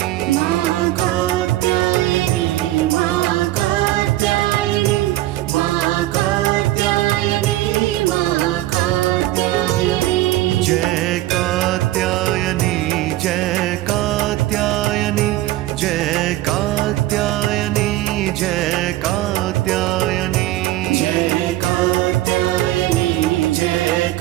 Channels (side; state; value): left; quieter; 15.8 dB